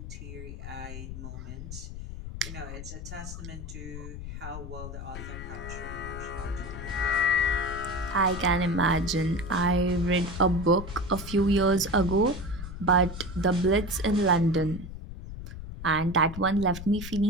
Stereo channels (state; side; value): noise; left; rumble, 9 dB below the sound